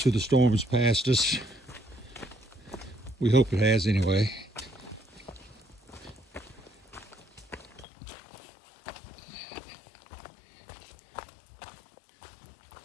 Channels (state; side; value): drops out; right; at 7.9 s